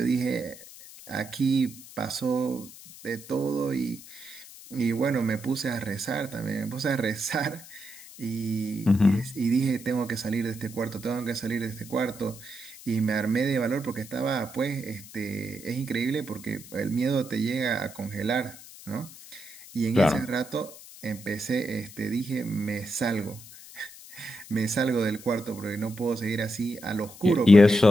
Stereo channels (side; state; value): left; noise; hiss, 17 dB below the sound